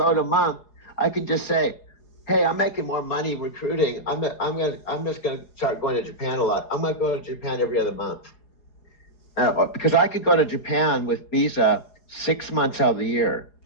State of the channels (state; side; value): late; right; 4.8 ms